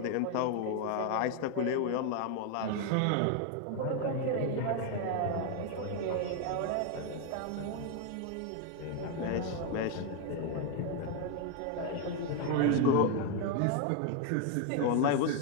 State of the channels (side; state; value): both; different; correlation 0.01